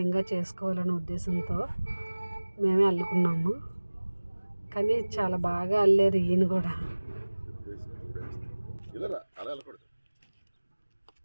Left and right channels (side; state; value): both; inverted; correlation -1.00